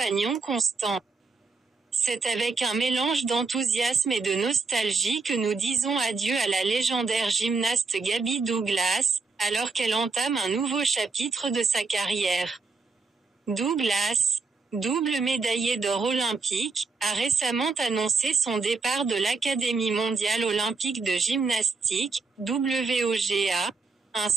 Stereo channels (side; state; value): left; quieter; 4.3 dB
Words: constant. C'est avec un mélange d'enthousiasme et de nostalgie que nous disons adieu à la légendaire gymnaste Gabby Douglas, alors qu'elle entame un nouveau chapitre de sa carrière. Douglas, double médaillée d'or olympique, a récemment annoncé son départ de l'Académie mondiale olympique de gymnastique, WOGA, un